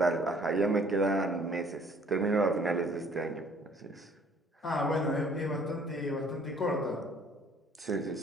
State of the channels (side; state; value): both; normal; correlation 0.58